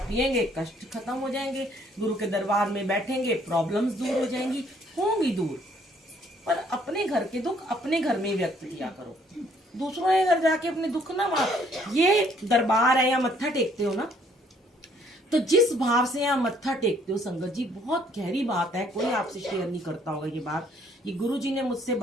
पिएंगे, कष्ट खत्म हो जाएंगे, गुरु के दरबार में बैठेंगे, प्रॉब्लम्स दूर हो जाएंगी, होंगी दूर। पर अपने घर के दुख अपने घर में ही व्यक्त किया करो, दूसरों के घर जाके अपने दुख ना मार। ये दरबार है या मत्था टेकते हो ना, तो जिस भाव से यहाँ मत्था टेकते हो संगत जी, बहुत गहरी बात है, कोई आपसे शेयर नहीं करता होगा ये बात। ये गुरु जी ने मुझसे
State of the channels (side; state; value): both; normal; correlation 0.64